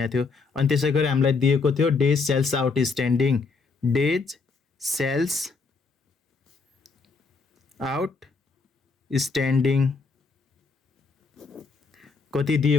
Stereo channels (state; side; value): quieter; right; 4.4 dB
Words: थियो। अनि त्यसै गरी हामीलाई दिएको थियो days sales outstanding days sales outstanding कति